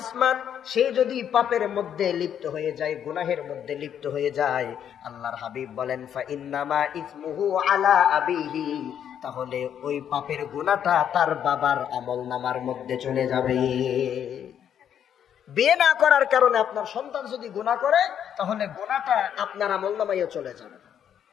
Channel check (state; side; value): quieter; right; 9.2 dB